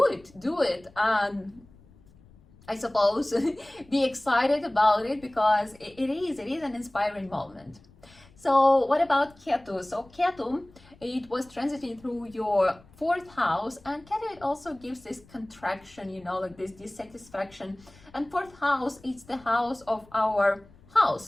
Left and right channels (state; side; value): noise; left; rumble, 26 dB below the sound